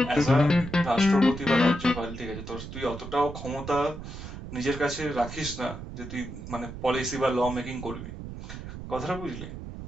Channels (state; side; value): noise; right; rumble, 10 dB below the sound